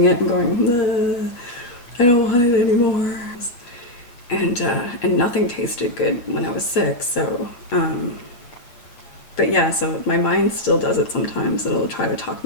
it and going, I don't want it anymore. And nothing tasted good when I was sick. So, but yeah, so my mind still does it sometimes. It'll try to talk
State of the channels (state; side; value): late; right; 8.5 ms